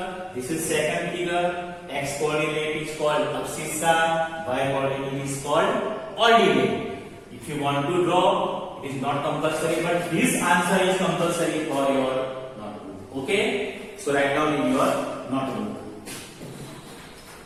this is second figure. X coordinate is called abscissa, y coordinate is called ordinate. If you want to draw, it is not compulsory, but this answer is compulsory for your notebook. Okay, so write down in your notebook.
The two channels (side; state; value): both; identical; correlation 1.00